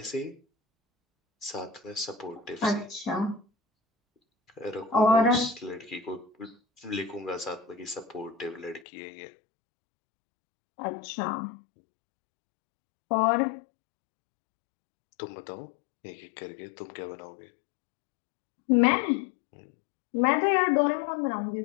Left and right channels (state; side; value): drops out; right; at 8.8 s